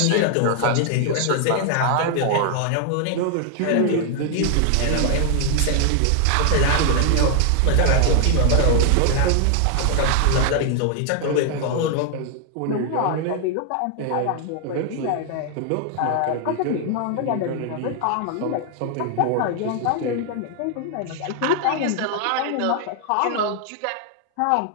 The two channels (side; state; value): both; different; correlation 0.00